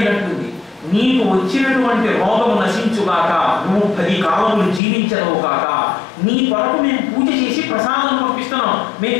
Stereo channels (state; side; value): drops out; right; at 4.8 s